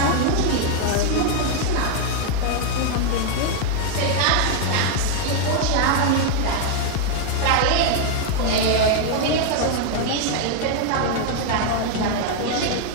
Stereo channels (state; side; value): different; both; correlation 0.00